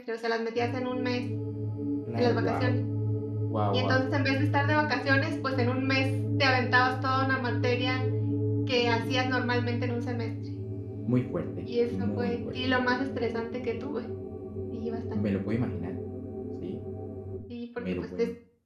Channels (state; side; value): identical; both; correlation 1.00